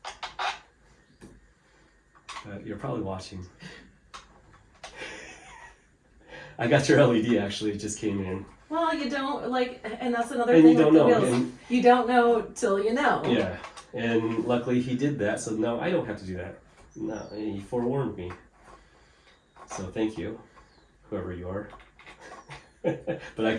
You're probably watching. I got your LED actually, it just came in. Well, you don't like, and that's another And thing you don't with the know. wheels. And, you don't know till you know. yeah, and luckily he did that, so now I don't have to do that. No, he forewarned me. So thank you, whoever you are. But I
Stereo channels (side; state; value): both; identical; correlation 1.00